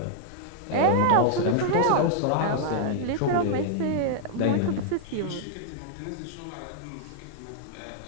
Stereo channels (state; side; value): different; both; correlation -0.01